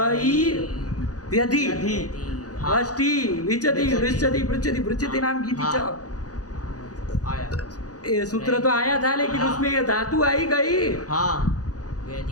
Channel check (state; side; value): late; right; 0.67 ms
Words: व्यधि, व्यधि। हाँ। वष्टि विचति विचति। वृश्चति पृच्छति पृच्छति नाम की हाँ। च। आया। ये सूत्र तो आया था, लेकिन हाँ। उसमें ये धातु आई गई। हाँ।